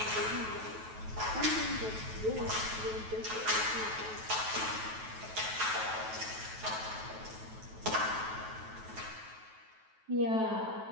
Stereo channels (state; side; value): late; left; 9.2 ms